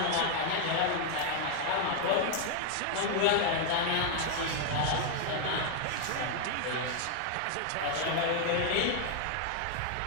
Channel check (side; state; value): both; different; correlation 0.00